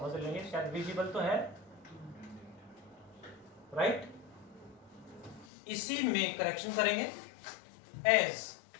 लेंगे, शायद विजिबल तो है, राइट। इसी में करेक्शन करेंगे, एज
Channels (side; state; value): right; drops out; at 5.5 s